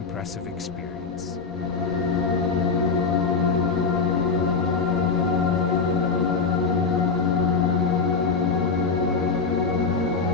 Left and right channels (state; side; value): quieter; right; 4.7 dB